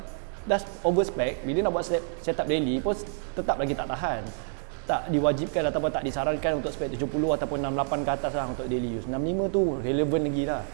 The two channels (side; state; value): left; silent; digital silence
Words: dah over spec. Bila nak buat setup daily pun tetap lagi tak tahan. Tak diwajibkan ataupun tak disarankan untuk spek 70 ataupun 68 ke atas lah untuk daily use. 65 tu relevan lagi lah.